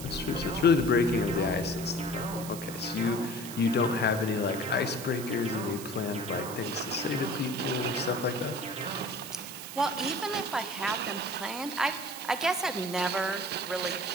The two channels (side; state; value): right; noise; hiss, 11 dB below the sound